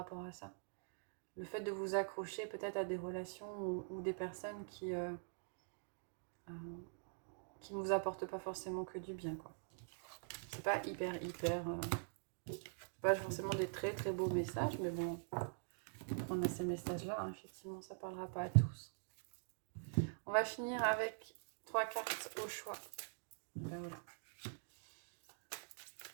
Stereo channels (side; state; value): left; silent; digital silence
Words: à ça. Le fait de vous accrocher peut-être à des relations ou des personnes qui ne vous apportent pas forcément que du bien, quoi. C'est pas pas forcément des très très beaux messages, mais bon, on a ces messages-là, hein, effectivement, ça parlera pas à tous. On va finir avec 3 cartes au choix. Ben voilà.